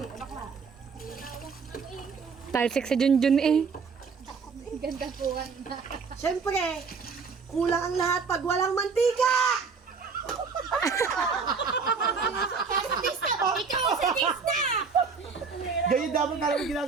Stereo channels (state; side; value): quieter; left; 5.3 dB